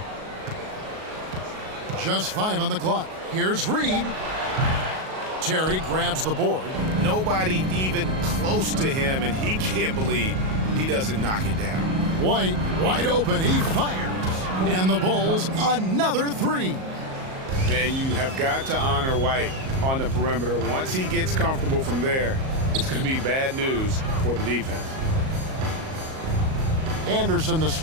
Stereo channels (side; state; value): left; late; 38 ms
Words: Just 5 on the clock. Here's Reed. Terry grabs the board. Nobody even close to him, and he can't believe he doesn't knock it down. White, wide open. He fires. And the Bulls, another 3. And you have got to honor White on the perimeter. Once he gets comfortable from there, it's going to be bad news for the defense. Anderson the